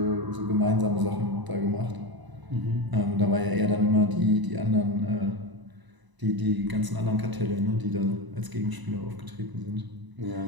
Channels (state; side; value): late; left; 1.0 ms